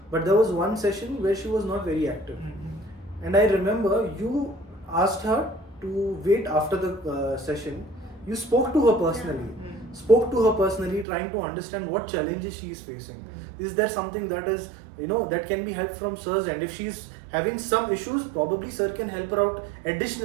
But there was one session where she was not very active. And I remember you asked her to wait after the session. You spoke to her personally. Trying to understand what challenges she is facing. Is there something that is, that can be helped from sir's end? If she's having some issues, probably sir can help her out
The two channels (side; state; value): left; drops out; at 11.1 s